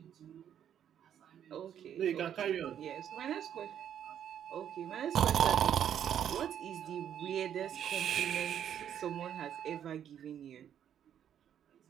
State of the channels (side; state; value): left; quieter; 9.5 dB